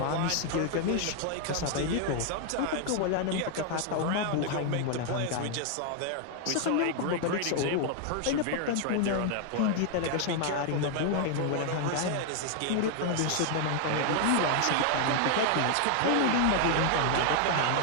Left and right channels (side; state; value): both; different; correlation 0.00